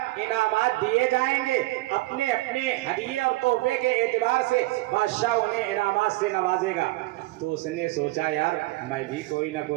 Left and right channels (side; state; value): left; quieter; 20.4 dB